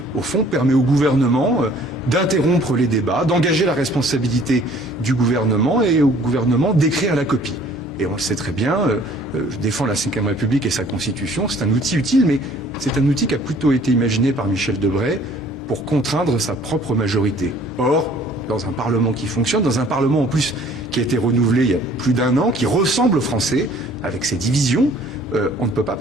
au fond, permet au gouvernement d'interrompre les débats, d'engager la responsabilité du gouvernement et au gouvernement d'écrire la copie. Et on le sait très bien, je défends la Ve République et sa Constitution, c'est un outil utile, mais c'est un outil qui a plutôt été imaginé par Michel Debré pour contraindre sa propre majorité. Or, dans un Parlement qui fonctionne, dans un Parlement en plus qui a été renouvelé il y a plus d'1 an, qui ressemble aux Français, avec ses divisions, on ne peut pas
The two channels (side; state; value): both; normal; correlation 0.55